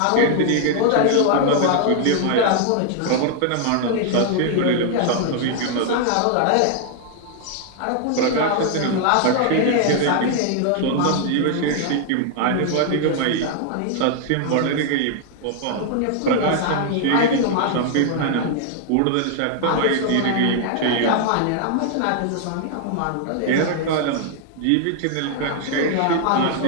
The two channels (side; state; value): both; different; correlation 0.00